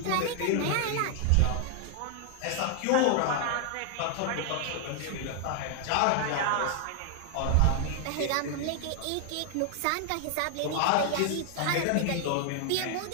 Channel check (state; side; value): different; both; correlation 0.00